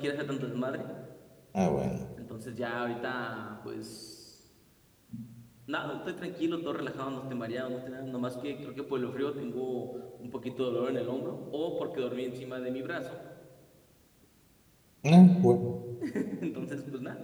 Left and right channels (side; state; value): both; identical; correlation 1.00